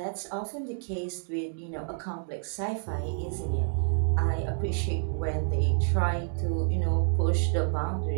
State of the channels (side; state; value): left; silent; 59 dB below the other